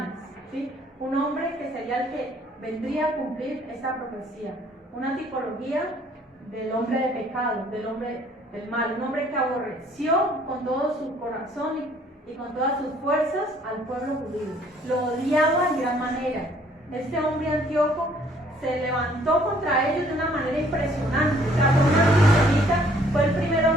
¿sí? Un hombre que sería el que vendría a cumplir esta profecía. Una tipología del hombre de pecado, del hombre del mal, un hombre que aborreció con todo su corazón y con todas sus fuerzas al pueblo judío. Lo odiaba en gran manera. Este hombre Antíoco se levantó contra ellos de una manera impresionante. O sea, fue una antisemita, fue el primer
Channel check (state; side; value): normal; both; correlation 0.60